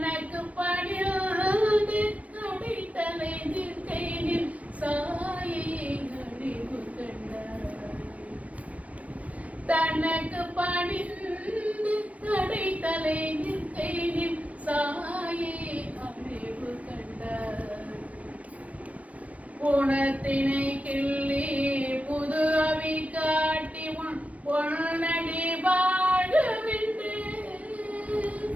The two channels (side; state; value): left; late; 0.067 ms